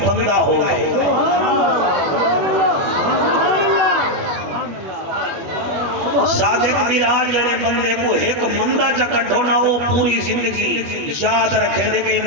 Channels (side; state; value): left; late; 21 ms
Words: بندہ ہوئے. صادق میراج جڑے بندے کو ایک مندہ جا کٹھو نہ وہ پوری زندگی یاد رکھے دے کہ